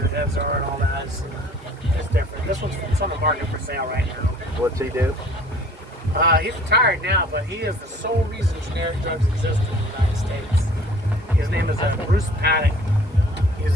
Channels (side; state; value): both; normal; correlation 0.52